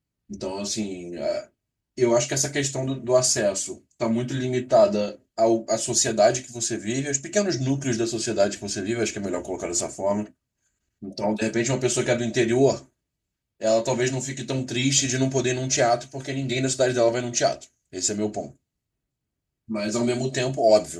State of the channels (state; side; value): identical; both; correlation 1.00